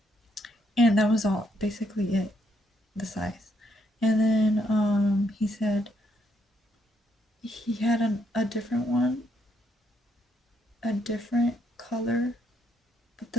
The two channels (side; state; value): both; normal; correlation 0.74